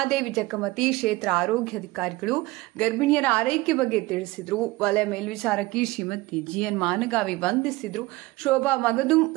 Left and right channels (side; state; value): left; quieter; 20.5 dB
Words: ಜಕ್ಕಮತಿ ಕ್ಷೇತ್ರ ಆರೋಗ್ಯಾಧಿಕಾರಿಗಳು ಗರ್ಭಿಣಿಯರ ಆರೈಕೆ ಬಗ್ಗೆ ತಿಳಿಸಿದರು. ವಲಯ ಮೇಲ್ವಿಚಾರಕಿ ಶ್ರೀಮತಿ ಜಿಎನ್ ಮಾನಗಾವಿ ವಂದಿಸಿದರು. ಶೋಭಾ ಮಗದುಂ,